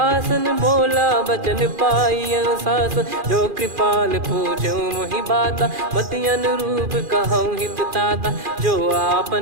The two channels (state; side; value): late; left; 2.4 ms